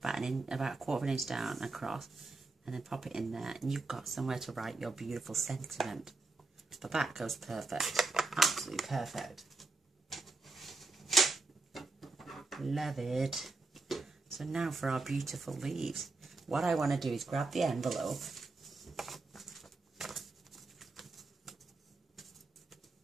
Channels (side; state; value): left; quieter; 3.7 dB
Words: about a quarter of an inch down across, and then pop it in there, and you've got somewhere to write your beautiful sentiment. But that goes perfect. Absolutely perfect. Love it. So now for our beautiful leaves. What I want to do is grab the envelope.